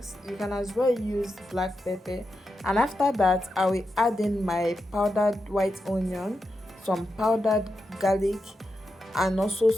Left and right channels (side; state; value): both; normal; correlation 0.88